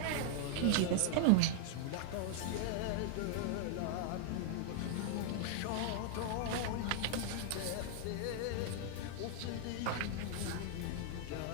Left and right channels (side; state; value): both; different; correlation -0.01